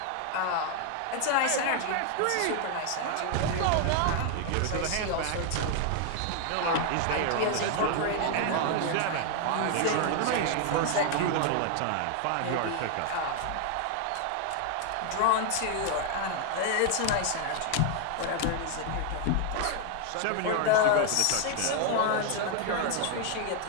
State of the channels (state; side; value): different; both; correlation 0.00